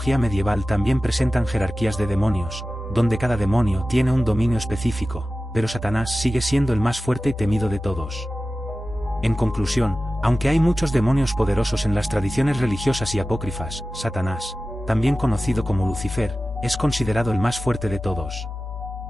medieval también presentan jerarquías de demonios, donde cada demonio tiene un dominio específico, pero Satanás sigue siendo el más fuerte y temido de todos. En conclusión, aunque hay muchos demonios poderosos en las tradiciones religiosas y apócrifas, Satanás, también conocido como Lucifer, es considerado el más fuerte de todos.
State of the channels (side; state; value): both; normal; correlation 0.95